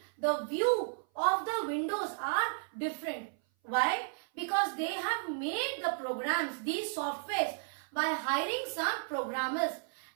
the view of the windows are different. Why? Because they have made the programs, these softwares, by hiring some programmers,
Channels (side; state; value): left; silent; 55 dB below the other